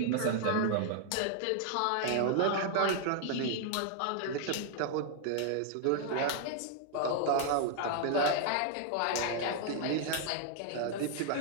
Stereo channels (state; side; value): different; both; correlation 0.00